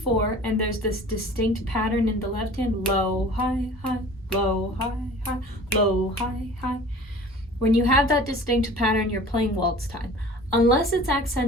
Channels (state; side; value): normal; both; correlation 0.44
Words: and there's this distinct pattern in the left hand, low, high, high, low, high, high, low, high, high. When you have that distinct pattern, you're playing waltz time. Unless it's